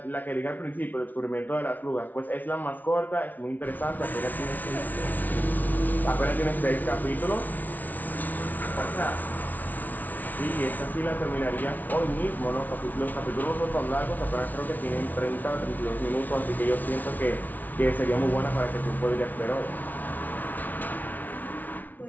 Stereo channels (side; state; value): right; late; 0.079 ms